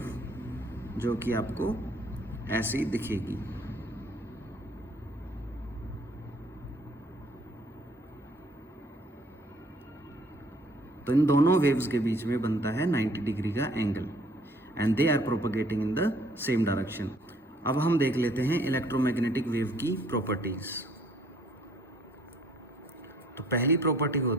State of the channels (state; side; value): normal; both; correlation 0.61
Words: जो कि आपको ऐसी दिखेगी। तो इन दोनों वेव्स के बीच में बनता है 90 डिग्री का angle and they are propagating in the same direction. अब हम देख लेते हैं इलेक्ट्रोमैग्नेटिक वेव की प्रॉपर्टीज। तो पहली प्रॉपर्टी